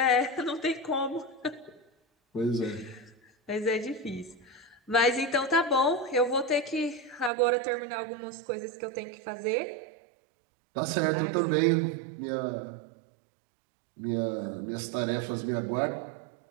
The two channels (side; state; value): left; drops out; at 7.3 s